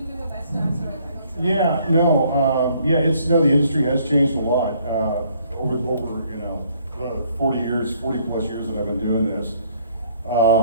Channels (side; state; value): both; inverted; correlation -0.64